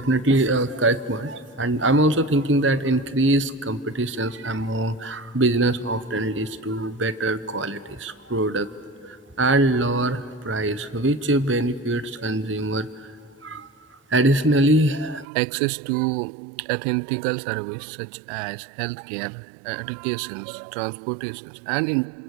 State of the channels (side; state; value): left; drops out; at 15.2 s